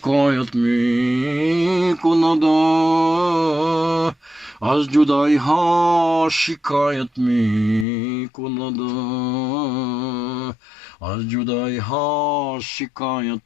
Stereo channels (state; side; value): drops out; right; at 7.9 s